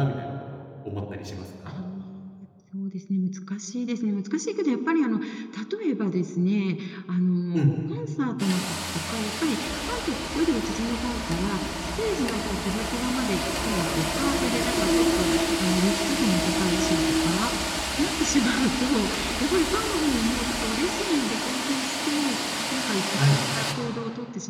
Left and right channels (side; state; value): both; identical; correlation 1.00